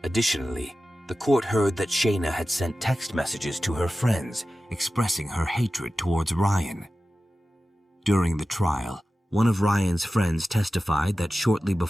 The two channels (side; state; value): both; normal; correlation 0.94